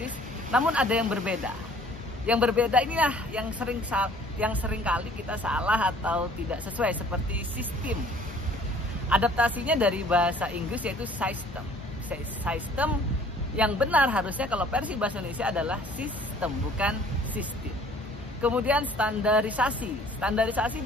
namun ada yang berbeda. Yang berbeda inilah yang sering kali kita salah atau tidak sesuai, seperti sistem. Adaptasinya dari bahasa Inggris yaitu system. System yang benar harusnya kalau versi bahasa Indonesia adalah sistem, bukan sistem. Kemudian standarisasi. Standarisasi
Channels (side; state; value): both; normal; correlation 0.54